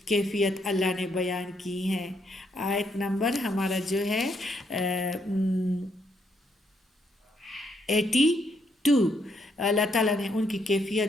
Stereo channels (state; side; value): normal; both; correlation 0.74